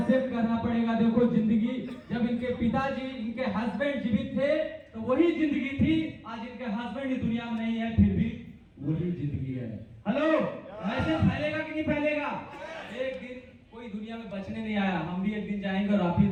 करना पड़ेगा। देखो, जिंदगी जब इनके पिताजी, इनके हस्बैंड जीवित थे तो वही जिंदगी थी। आज इनके हस्बैंड इस दुनिया में नहीं है, फिर भी वही जिंदगी है। हेलो, मैसेज फैलेगा कि नहीं फैलेगा? एक दिन कोई दुनिया में बचने नहीं आया। हम भी एक दिन जाएंगे और आप भी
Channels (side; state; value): both; identical; correlation 1.00